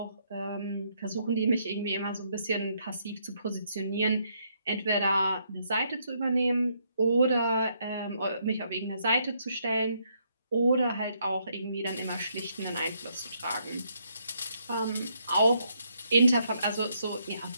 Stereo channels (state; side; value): inverted; both; correlation -0.74